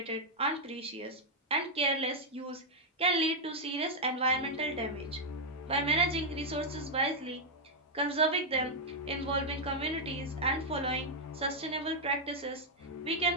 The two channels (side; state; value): both; normal; correlation -0.02